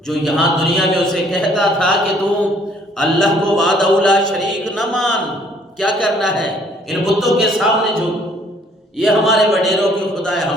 جو یہاں دنیا میں اسے کہتا تھا کہ تو اللہ کو وحدہ لا شریک نہ مان، کیا کرنا ہے ان بتوں کے سامنے جھک، یہ ہمارے وڈیروں کے خدا ہے،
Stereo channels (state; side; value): normal; both; correlation 0.61